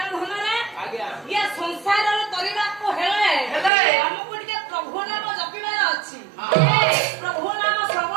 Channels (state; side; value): drops out; left; at 3.7 s